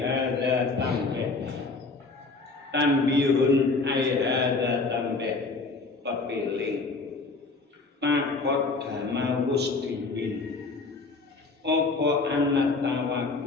tambah. Tanbihun ai hadza tambah. Pepeling. Pakot dama wusdibin. Apa anak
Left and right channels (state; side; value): quieter; right; 3.8 dB